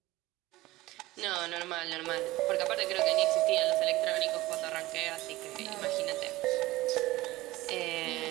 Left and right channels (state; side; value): quieter; left; 18.4 dB